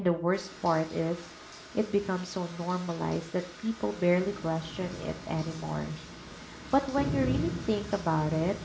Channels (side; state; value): both; identical; correlation 1.00